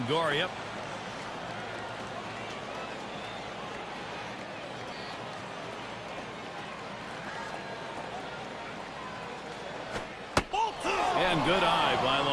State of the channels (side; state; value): both; identical; correlation 1.00